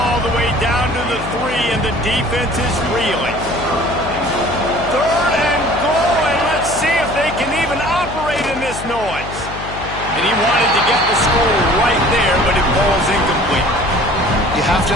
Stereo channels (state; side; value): noise; left; hum, 11 dB below the sound